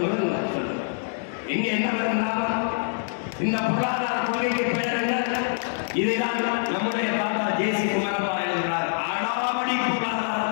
சொல்லுங்கள். இங்க என்ன வரும் லாபம்? இந்த பொருளாதார கொள்கைக்கு பெயர் என்ன? இதைதான் நம்முடைய தாத்தா ஜே.சி. குமரப்பா எழுதுகிறார். அடாவடி பொருளாதார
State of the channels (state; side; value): silent; right; digital silence